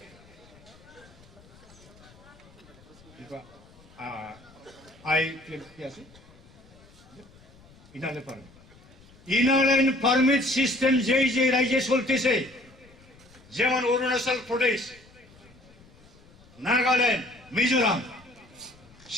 ইনারলাইন পারমিট সিস্টেম যে রাজ্যে চলতেছে, যেমন অরুণাচল প্রদেশ, নাগাল্যান্ড, মিজোরাম,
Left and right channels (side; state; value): left; noise; rumble, 25 dB below the sound